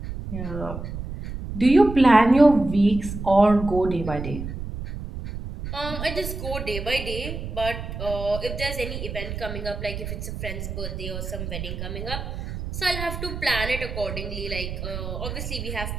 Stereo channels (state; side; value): noise; right; rumble, 7 dB below the sound